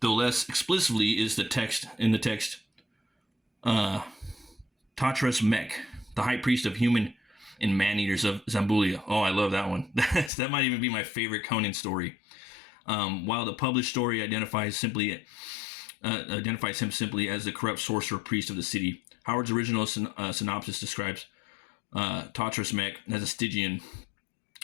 though less explicitly, is the text Tatras Mech, the high priest of human and man-eaters of Zambulia. Oh, I love that one. That might even be my favorite Conan story. While the published story identifies him simply as the corrupt sorcerer priest of the city, Howard's original synopsis describes Tatras Mech as a Stygian,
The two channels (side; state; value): right; drops out; at 10.3 s